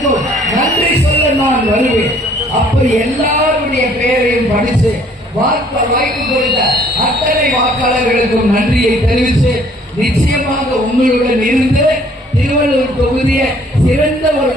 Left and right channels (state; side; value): normal; both; correlation 0.59